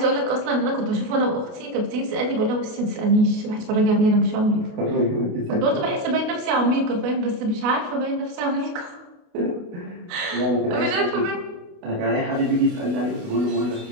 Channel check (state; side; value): late; left; 28 ms